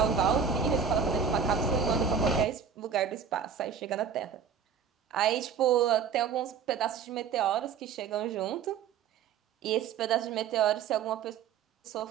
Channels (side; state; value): left; quieter; 6.9 dB